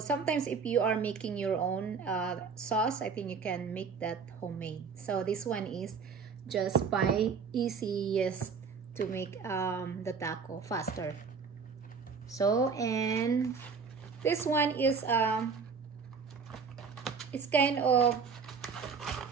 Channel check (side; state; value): left; quieter; 5.6 dB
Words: if you are making your own sauce, I think you can make that homemade. So this one is just by easiest to make the taco faster. So, and this one is it's kind of